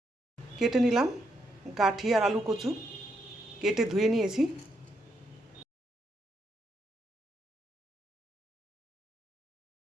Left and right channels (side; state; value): both; normal; correlation 0.78